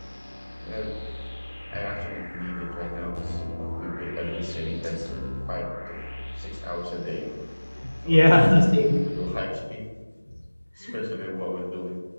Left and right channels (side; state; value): both; inverted; correlation -1.00